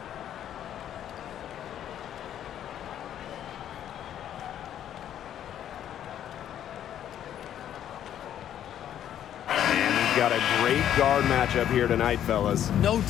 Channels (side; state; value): right; quieter; 10.6 dB